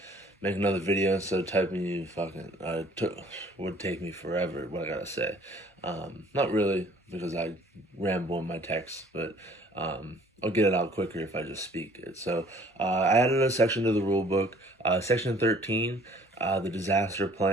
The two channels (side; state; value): both; normal; correlation 0.55